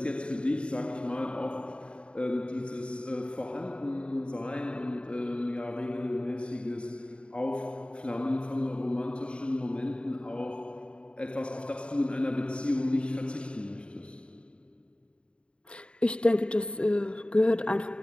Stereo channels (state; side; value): late; right; 0.055 ms